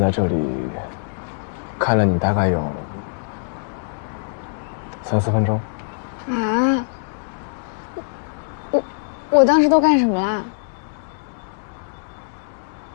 这里看了你大概有3、4分钟。啊！我当时都干什么啦？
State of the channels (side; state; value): right; silent; digital silence